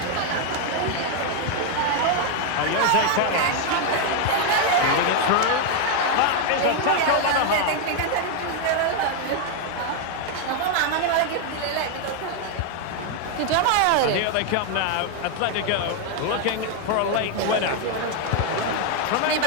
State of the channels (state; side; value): different; both; correlation 0.00